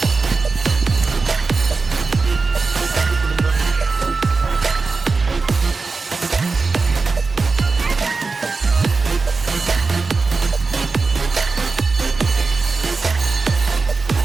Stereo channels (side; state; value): left; quieter; 4.2 dB